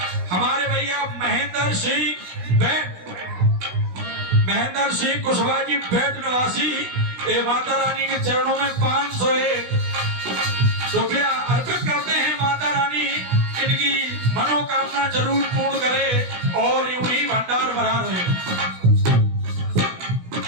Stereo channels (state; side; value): late; left; 16 ms